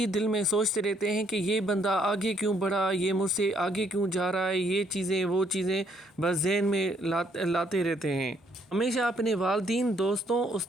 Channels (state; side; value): normal; both; correlation 0.68